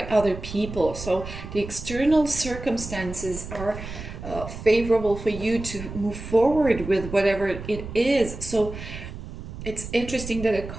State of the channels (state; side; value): noise; right; rumble, 10 dB below the sound